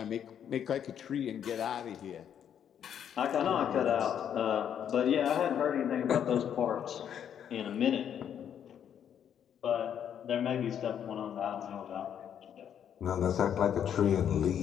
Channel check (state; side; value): quieter; right; 9.0 dB